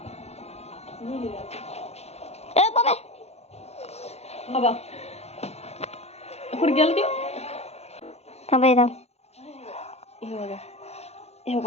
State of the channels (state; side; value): late; right; 0.31 ms